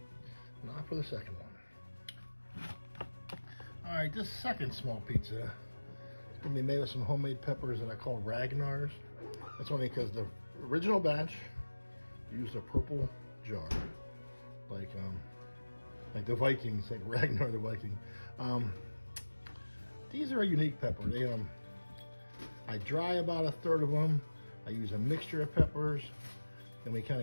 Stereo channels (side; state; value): both; inverted; correlation -1.00